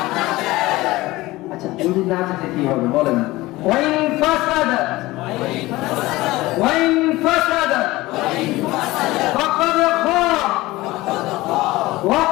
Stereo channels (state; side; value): quieter; right; 19.1 dB